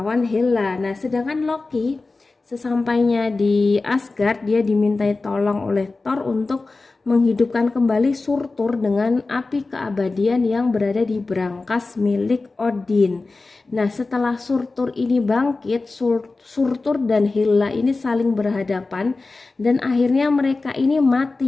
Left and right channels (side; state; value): right; quieter; 3.6 dB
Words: Hela. Nah, sedangkan Loki sesampainya di Asgard, dia dimintai tolong oleh Thor untuk menghidupkan kembali Surtur dengan api keabadian yang berada di brankas milik Odin. Nah, setelah Surtur ini bangkit, Surtur dan Hela ini saling berhadapan dan akhirnya mereka ini